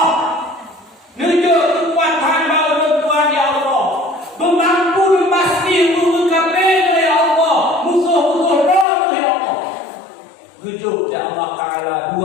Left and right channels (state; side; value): drops out; right; at 8.8 s